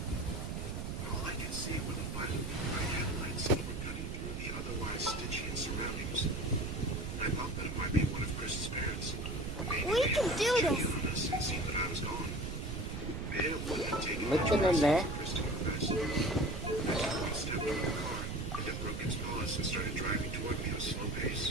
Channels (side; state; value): right; noise; rumble, 5 dB below the sound